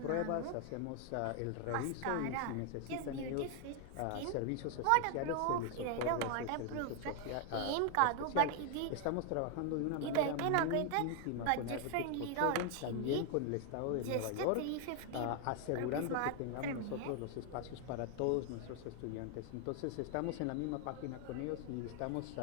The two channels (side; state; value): both; different; correlation 0.00